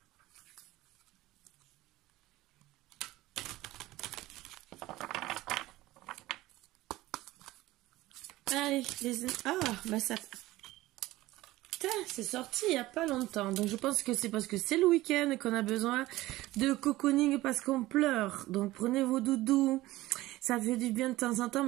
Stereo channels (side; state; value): left; quieter; 17.6 dB